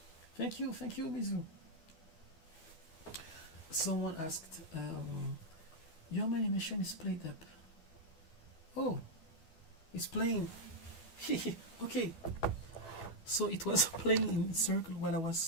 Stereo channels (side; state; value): right; late; 12 ms